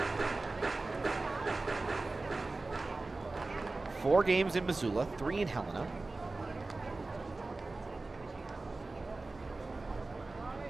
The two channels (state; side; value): quieter; left; 3.3 dB